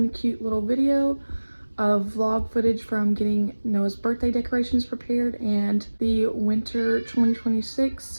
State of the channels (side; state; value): both; inverted; correlation -1.00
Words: cute little video of vlog footage from getting Noah's birthday decorations prepared and the winter